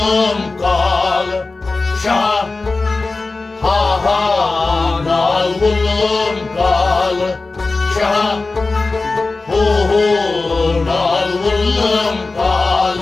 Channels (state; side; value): quieter; right; 3.6 dB